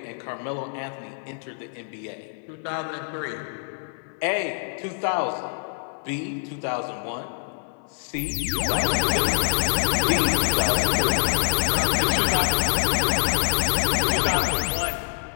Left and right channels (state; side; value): silent; right; digital silence